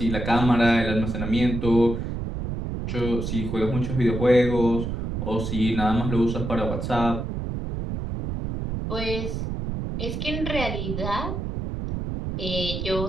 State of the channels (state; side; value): noise; right; rumble, 4 dB below the sound